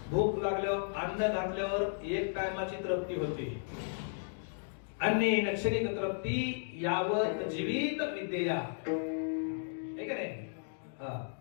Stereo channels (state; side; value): silent; right; digital silence